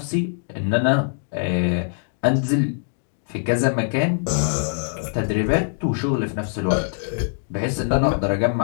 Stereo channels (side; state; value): right; silent; digital silence